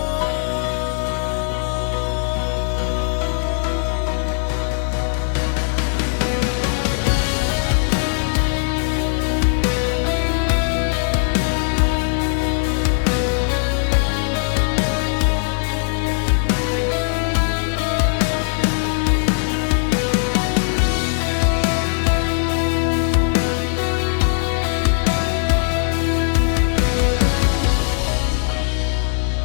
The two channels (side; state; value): right; silent; digital silence